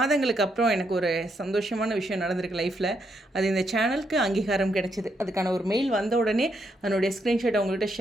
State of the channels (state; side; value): normal; both; correlation 0.78